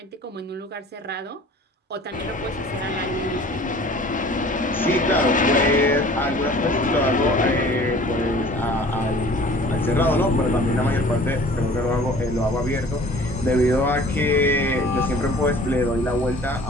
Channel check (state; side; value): normal; both; correlation 0.47